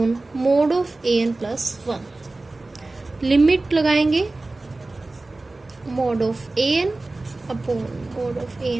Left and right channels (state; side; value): quieter; left; 3.1 dB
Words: mod of a n plus one. Limit लगाएंगे mod of a n upon mod of a